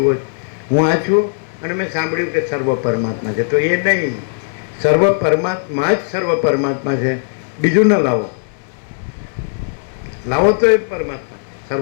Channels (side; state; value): right; silent; digital silence